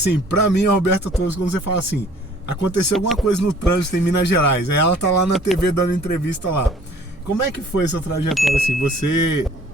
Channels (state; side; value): normal; both; correlation 0.54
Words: para mim, a Roberta Torres, quando você fala assim, aconteceu alguma coisa no trânsito em Minas Gerais, aí ela tá lá na TV dando entrevista lá. Como é que foi essa trajetória assim? Você